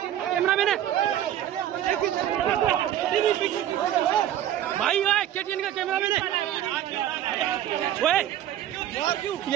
मैन है भाई, KTN का कैमरा मैन है।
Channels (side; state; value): left; quieter; 11.6 dB